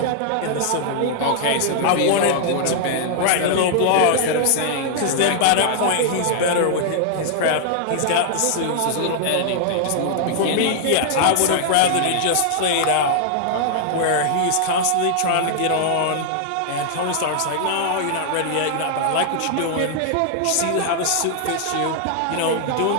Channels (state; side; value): different; both; correlation -0.01